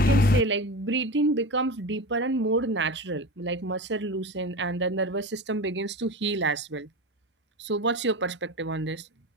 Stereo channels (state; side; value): normal; both; correlation 0.26